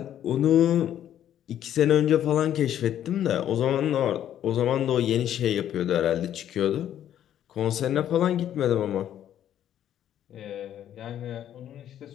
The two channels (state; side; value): quieter; right; 10.9 dB